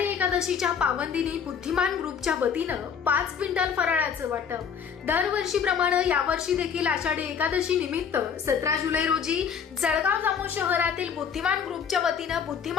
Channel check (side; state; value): right; quieter; 7.1 dB